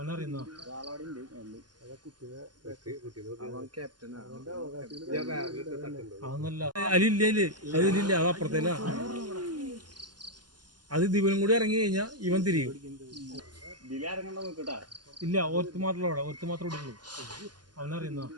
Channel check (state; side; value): late; left; 0.70 ms